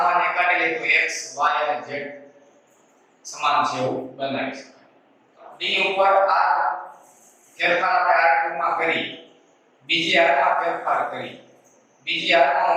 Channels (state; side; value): identical; both; correlation 1.00